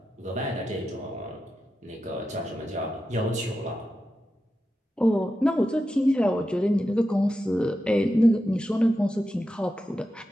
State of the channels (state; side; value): normal; both; correlation 0.90